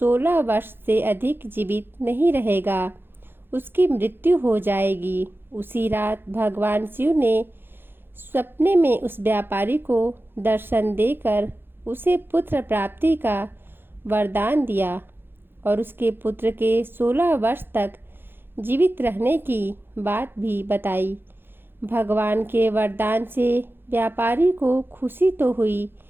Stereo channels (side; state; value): left; late; 0.10 ms